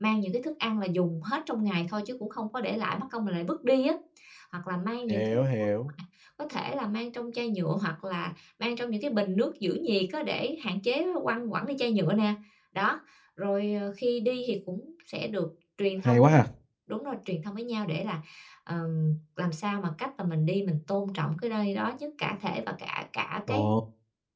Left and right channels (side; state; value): both; identical; correlation 1.00